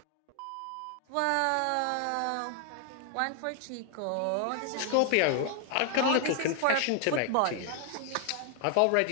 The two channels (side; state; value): both; different; correlation 0.00